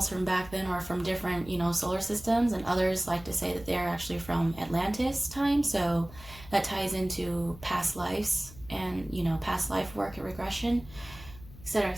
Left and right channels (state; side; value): noise; left; hum, 18 dB below the sound